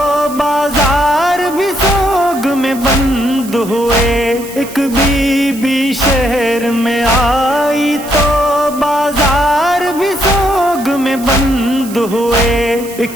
بازار بھی سوگ میں بند ہوا، ایک بی بی شہر میں آئی تو بازار بھی سوگ میں بند ہوئے،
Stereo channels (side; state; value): right; noise; hiss, 16 dB below the sound